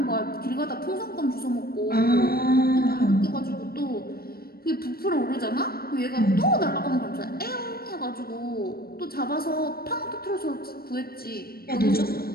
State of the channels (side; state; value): right; late; 0.44 ms